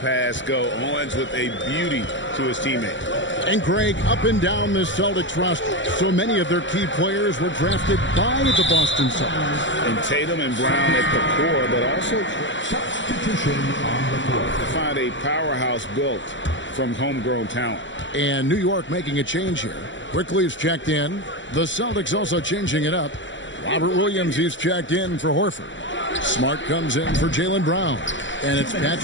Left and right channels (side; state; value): right; late; 0.54 ms